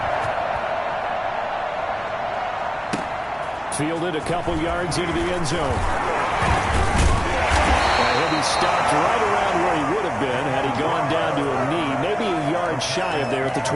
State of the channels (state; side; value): identical; both; correlation 1.00